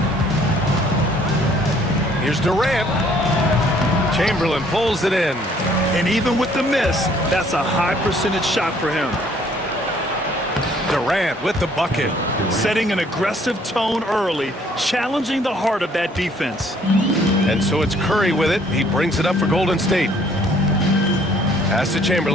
Here's Durant. Chamberlain pulls it in. And even with the miss, that's a high percentage shot for him. Durant with the bucket. Setting an aggressive tone early, challenging the heart of that defense. And so it's Curry with it. He brings it up for Golden State. Pass to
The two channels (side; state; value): both; normal; correlation 0.61